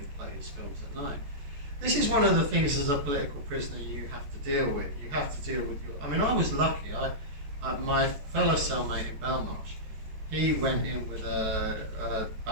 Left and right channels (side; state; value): left; late; 14 ms